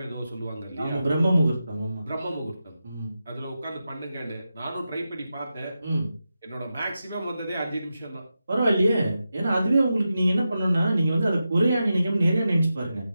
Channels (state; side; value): inverted; both; correlation -0.90